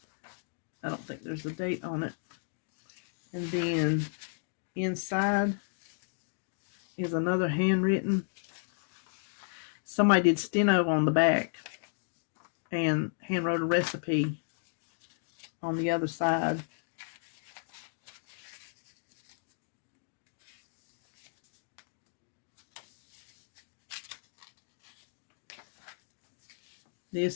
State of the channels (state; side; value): silent; right; digital silence